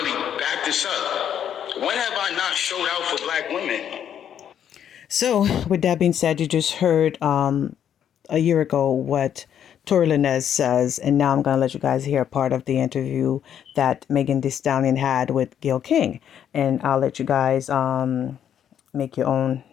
back this up. When have I not showed out for black women? So, with that being said, you just heard a year ago what Tory Lanez says, and now I'm going to let you guys hear part of the interview that Megan Thee Stallion had with Gayle King, and I'll let you guys make your own,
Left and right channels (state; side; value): quieter; right; 9.4 dB